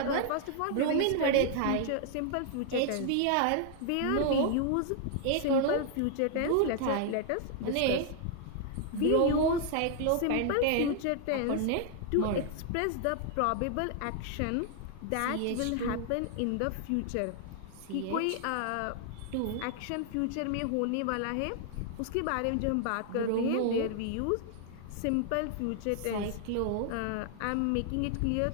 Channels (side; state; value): both; different; correlation 0.00